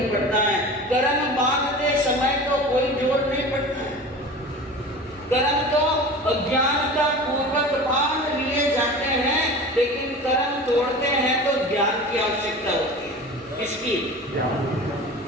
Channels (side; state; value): both; normal; correlation 0.35